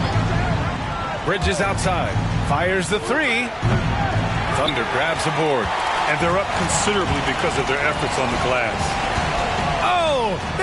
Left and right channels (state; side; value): identical; both; correlation 1.00